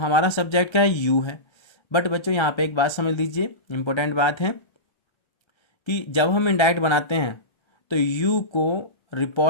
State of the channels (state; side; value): late; right; 1.4 ms